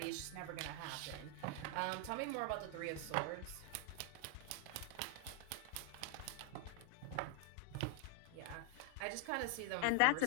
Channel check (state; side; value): different; both; correlation 0.00